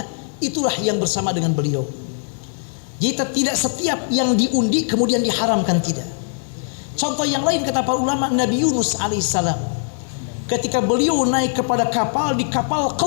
itulah yang bersama dengan beliau. Jadi tidak setiap yang diundi kemudian diharamkan, tidak. Contoh yang lain kata para ulama, Nabi Yunus alaihissalam ketika beliau naik kepada kapal, di kapal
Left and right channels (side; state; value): right; silent; digital silence